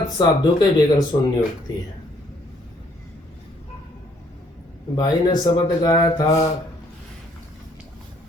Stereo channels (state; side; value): normal; both; correlation 0.65